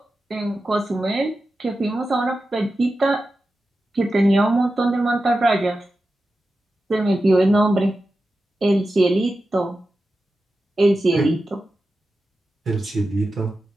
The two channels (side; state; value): both; normal; correlation 0.92